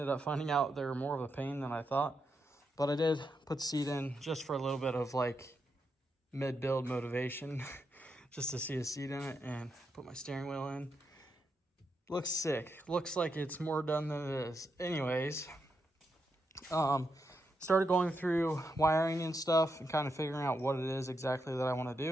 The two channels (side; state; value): both; normal; correlation 0.83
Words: up finding out they were more of a pain than I thought. But I did put the seat in just for a little bit of like mid-build motivation, just to see a seat in it, and put my steering wheel in. Looks sick. Looks like it's more done than it is. Anyways, started going through wiring and stuff and kind of figuring out what it is exactly that I want to